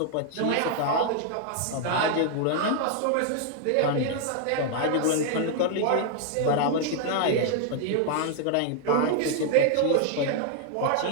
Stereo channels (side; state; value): both; different; correlation 0.00